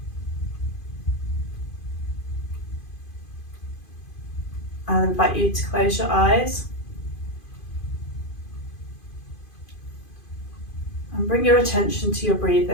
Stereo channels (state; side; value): late; right; 2.5 ms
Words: I'll invite you to close your eyes and bring your attention to your